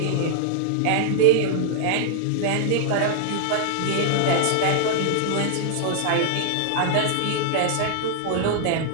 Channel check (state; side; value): different; both; correlation -0.01